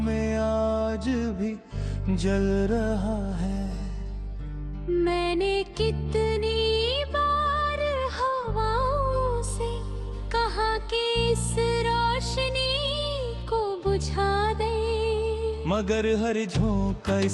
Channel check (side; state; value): both; identical; correlation 1.00